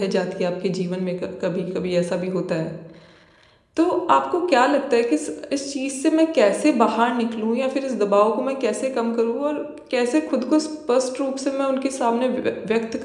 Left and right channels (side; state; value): both; identical; correlation 1.00